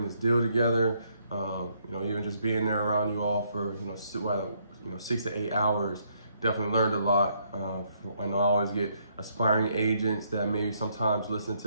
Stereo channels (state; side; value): inverted; both; correlation -0.71